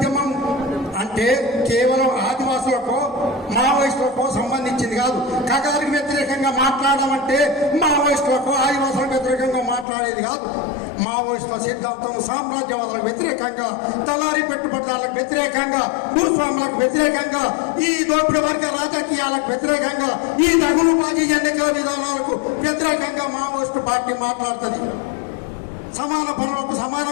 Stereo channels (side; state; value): right; drops out; at 9.9 s